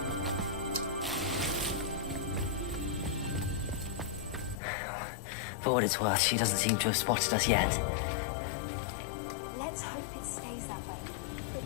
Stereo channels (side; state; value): right; drops out; at 4.5 s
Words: For what it's worth, she doesn't seem to have spotted us yet. Let's hope it stays that way. At